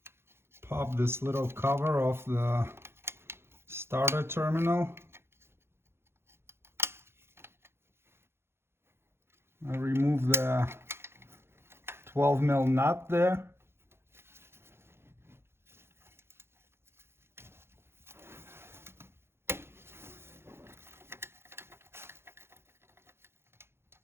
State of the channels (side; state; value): left; late; 0.12 ms